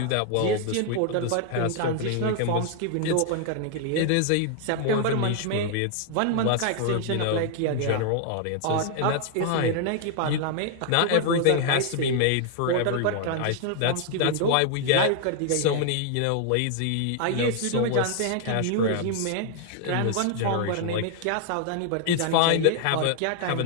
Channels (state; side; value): different; both; correlation 0.00